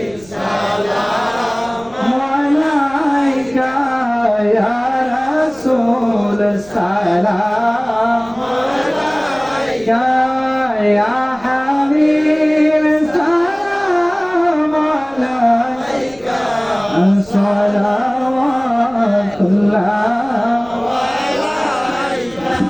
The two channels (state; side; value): noise; right; rumble, 25 dB below the sound